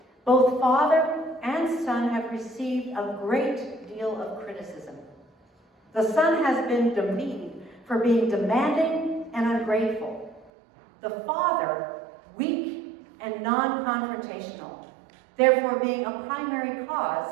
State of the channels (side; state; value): left; drops out; at 10.5 s